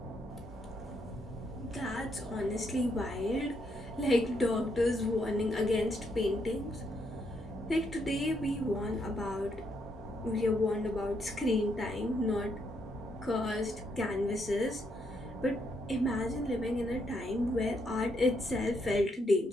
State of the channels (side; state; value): both; normal; correlation 0.76